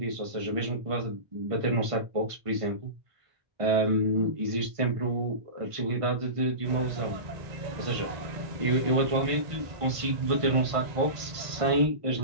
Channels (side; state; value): left; late; 1.5 ms